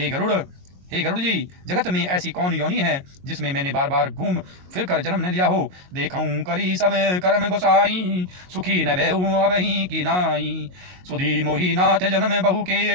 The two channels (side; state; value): left; late; 22 ms